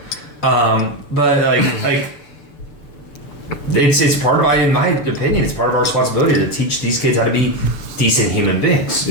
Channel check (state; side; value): late; right; 6.8 ms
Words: But like it's part of, in my opinion, it's part of our responsibility to teach these kids how to be decent human beings.